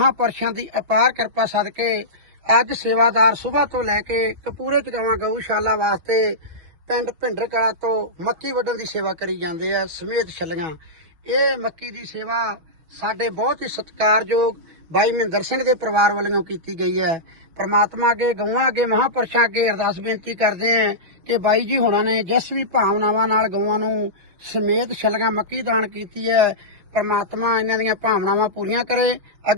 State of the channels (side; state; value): left; late; 6.1 ms